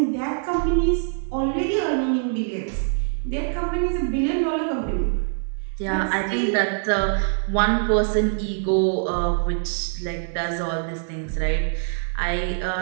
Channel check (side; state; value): left; silent; digital silence